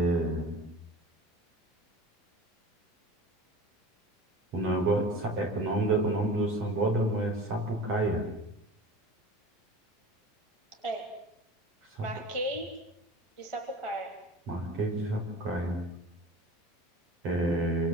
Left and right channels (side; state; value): both; normal; correlation 0.38